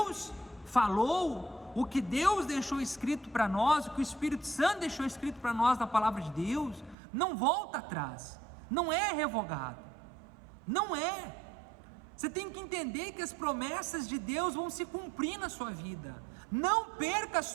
falou, o que Deus deixou escrito para nós, o que o Espírito Santo deixou escrito para nós na palavra de Deus, não volta atrás, não é revogado, não é. Você tem que entender que as promessas de Deus vão se cumprir na sua vida. Não perca a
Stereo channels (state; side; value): drops out; left; at 7.0 s